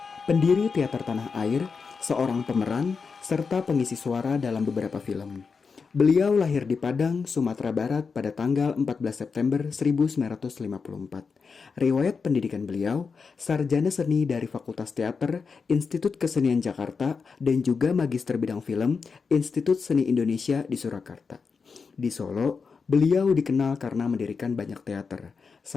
pendiri teater tanah air, seorang pemeran, serta pengisi suara dalam beberapa film. Beliau lahir di Padang, Sumatera Barat pada tanggal 14 September 1954. Riwayat pendidikan beliau, sarjana seni dari Fakultas Teater, Institut Kesenian Jakarta, dan juga magister bidang film, Institut Seni Indonesia di Surakarta. Di Solo, beliau dikenal karena mendirikan banyak teater.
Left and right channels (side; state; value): right; quieter; 5.2 dB